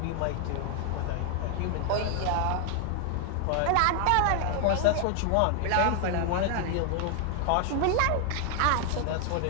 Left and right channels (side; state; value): both; different; correlation 0.00